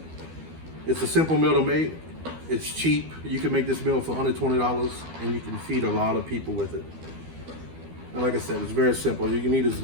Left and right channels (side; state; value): left; late; 12 ms